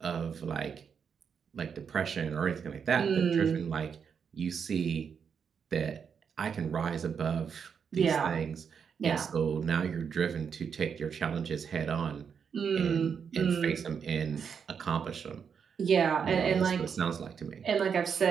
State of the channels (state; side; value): quieter; left; 6.8 dB